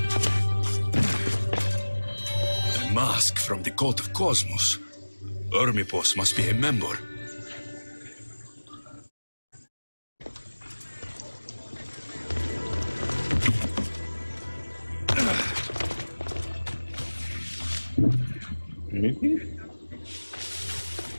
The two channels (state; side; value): inverted; both; correlation -1.00